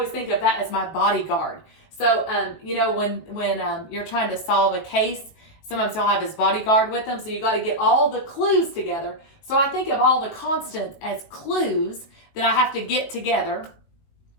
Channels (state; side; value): late; right; 19 ms